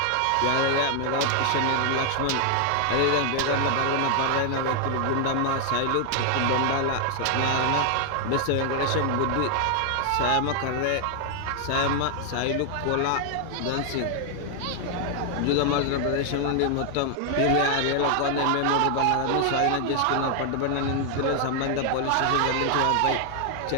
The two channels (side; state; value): both; different; correlation 0.00